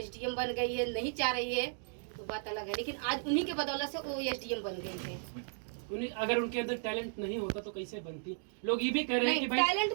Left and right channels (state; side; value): silent; left; digital silence